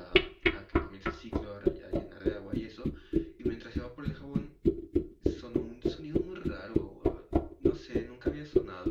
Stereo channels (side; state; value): both; identical; correlation 1.00